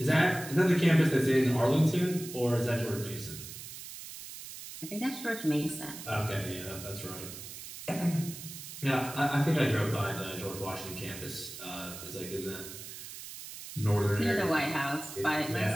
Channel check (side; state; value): right; noise; hiss, 12 dB below the sound